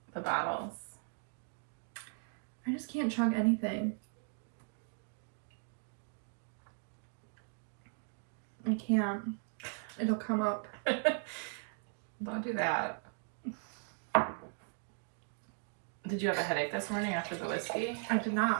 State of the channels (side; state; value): left; silent; 53 dB below the other